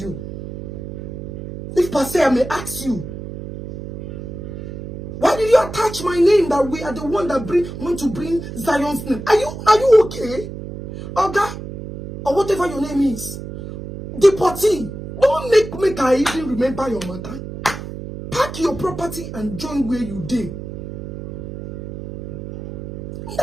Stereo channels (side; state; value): right; noise; hum, 9 dB below the sound